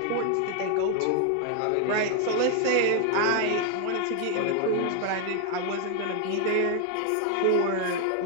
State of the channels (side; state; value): both; different; correlation 0.00